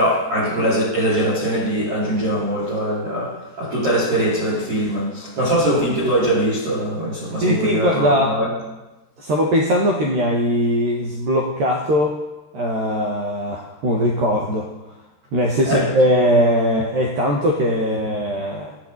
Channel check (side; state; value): left; late; 13 ms